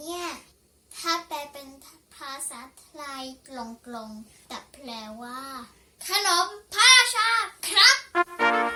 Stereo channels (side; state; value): both; identical; correlation 1.00